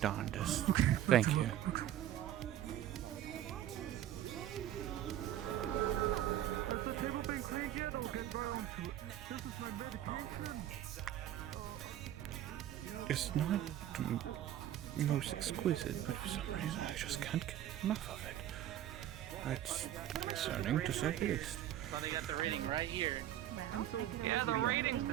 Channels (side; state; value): left; quieter; 12.0 dB